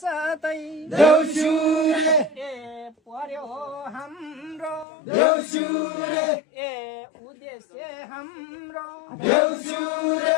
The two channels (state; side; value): drops out; right; at 4.9 s